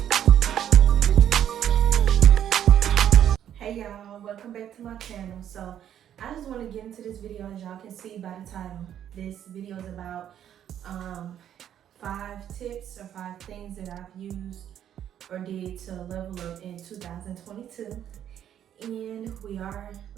Hey y'all, welcome back to my channel. So I just want to get into this video. As y'all can see by the title, this video is about 5 tips or 5 things that I've used or did to level up in 2022. And we are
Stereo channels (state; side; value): quieter; left; 10.2 dB